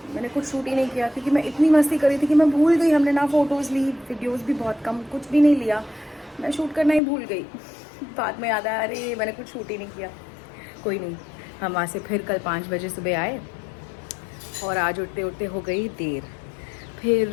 मैंने कुछ शूट ही नहीं किया क्योंकि मैं इतनी मस्ती करी थी कि मैं भूल गई। हमने ना फ़ोटोज़ ली, वीडियोज़ भी बहुत कम, कुछ भी नहीं लिया। मैं शूट करना ही भूल गई। बाद में याद आया, अरे मैंने कुछ शूट ही नहीं किया। कोई नहीं, हम वहाँ से फिर कल 5 बजे सुबह आए और आज उठते उठते हो गई देर।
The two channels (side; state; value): right; drops out; at 7.0 s